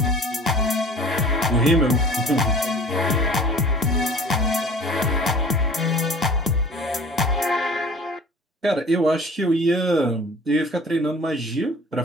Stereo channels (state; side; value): normal; both; correlation 0.45